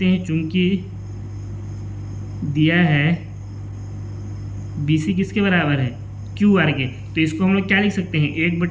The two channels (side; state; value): both; identical; correlation 1.00